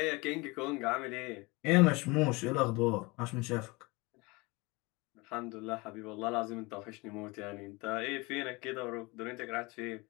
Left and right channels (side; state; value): right; quieter; 25.2 dB